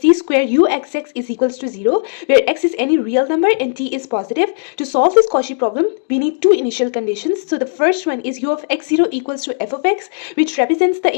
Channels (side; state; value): right; silent; digital silence